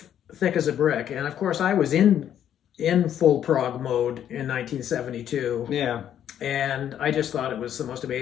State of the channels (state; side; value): quieter; right; 10.1 dB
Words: Thick as a Brick. And of course, I was in full prog mode in 1972. Yeah. And I just thought it was the most